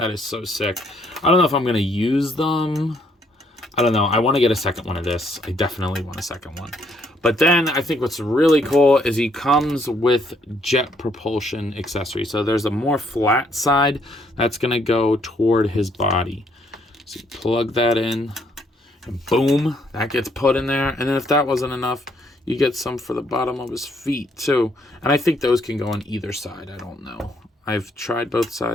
is so sick. I don't know if I'm going to use them. I don't know. I want to get a second one of this. I definitely want a second one. But then I think what's really cool is he comes with jet propulsion accessory. So there's a more flat side that's going to go toward his body. So you plug that in and boom, that gets put in there. And then if that wasn't enough, you get some for the bottom of his feet too. And I think those can go on either side. I don't know. I've tried both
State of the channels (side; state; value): both; normal; correlation 0.69